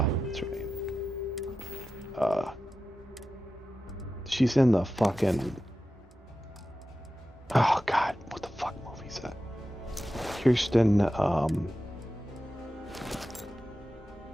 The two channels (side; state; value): both; normal; correlation 0.92